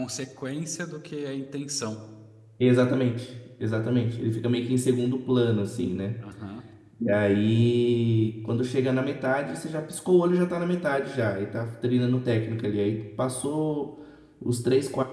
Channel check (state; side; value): identical; both; correlation 1.00